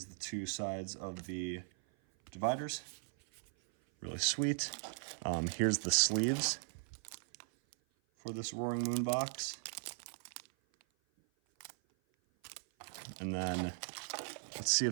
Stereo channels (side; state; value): left; silent; 52 dB below the other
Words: the two sides of the dividers. Really sweet. Here's the sleeves for this Roaring Moon box. And then let's see